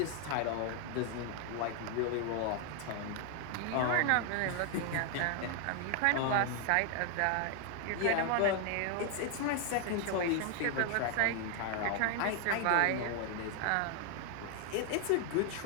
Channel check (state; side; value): different; both; correlation 0.00